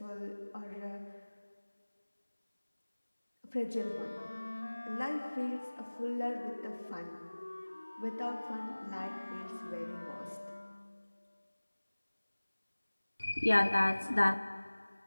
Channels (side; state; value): both; inverted; correlation -1.00